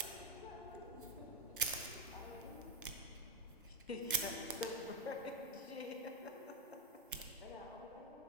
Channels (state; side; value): normal; both; correlation 0.07